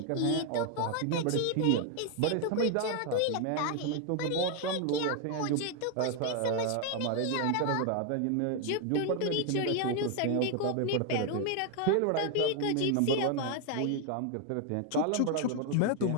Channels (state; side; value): different; both; correlation 0.01